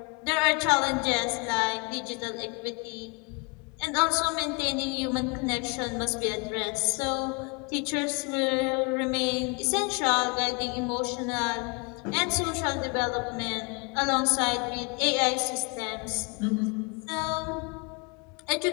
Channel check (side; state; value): right; quieter; 32.3 dB